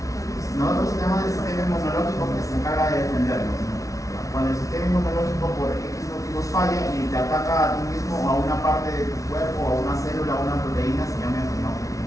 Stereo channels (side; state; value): right; late; 0.16 ms